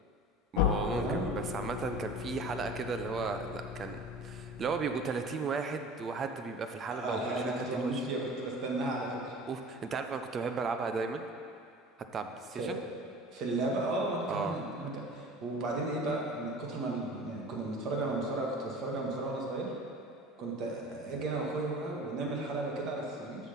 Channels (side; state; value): both; normal; correlation 0.40